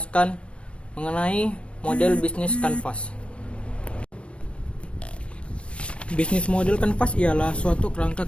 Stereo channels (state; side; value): late; right; 0.060 ms